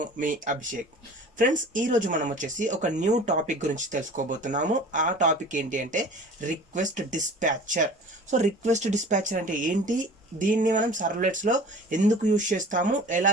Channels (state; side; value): normal; both; correlation 0.43